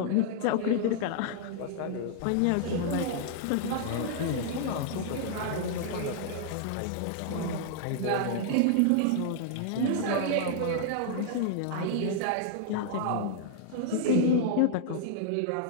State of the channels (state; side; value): different; both; correlation -0.01